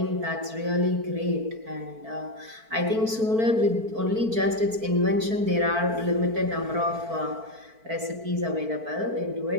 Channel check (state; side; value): late; left; 4.5 ms